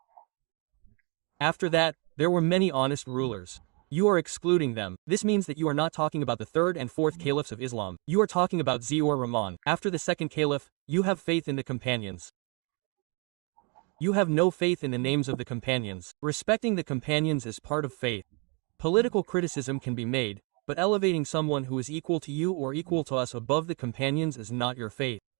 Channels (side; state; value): left; quieter; 33.5 dB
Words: After that, there were many honest rulers. You are excluding them. This means that you are not talking about the third and fourth caliphs of Islam. You are talking about Ziaur Rahman. After the second caliph, you have faith in the companions. You have no faith in the names of the companions. Respecting the companions is part of faith. Political criticism can be made, but elevating someone who is equal to you or equal to us above the companions is not your faith.